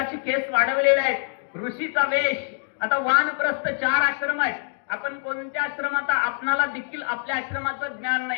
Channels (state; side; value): silent; right; digital silence